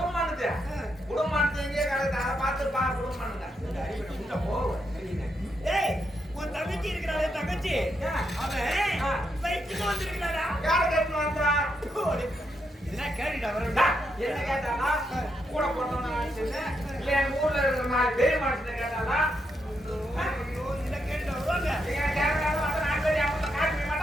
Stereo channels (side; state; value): both; normal; correlation 0.81